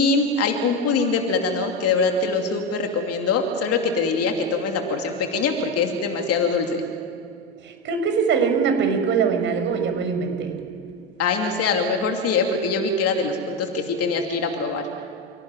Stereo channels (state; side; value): normal; both; correlation 0.14